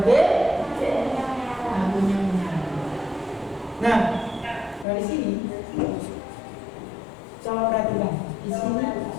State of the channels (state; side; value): drops out; right; at 4.9 s